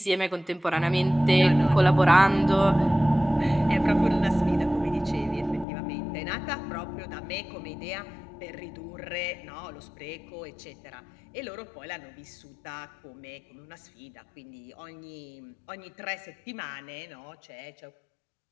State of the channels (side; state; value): right; drops out; at 5.7 s